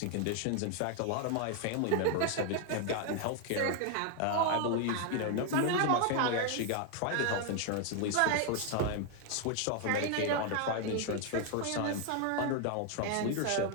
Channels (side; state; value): both; different; correlation 0.01